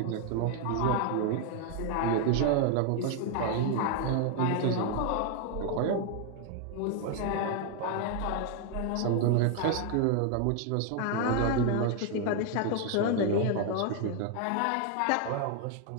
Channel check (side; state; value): both; different; correlation 0.00